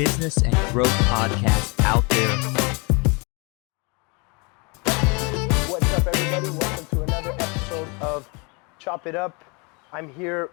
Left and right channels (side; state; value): right; quieter; 30.6 dB